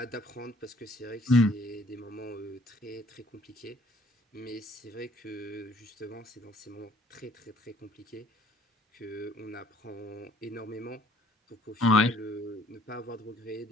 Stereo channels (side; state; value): both; normal; correlation 0.59